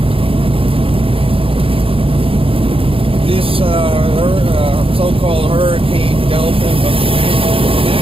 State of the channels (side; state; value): left; late; 0.27 ms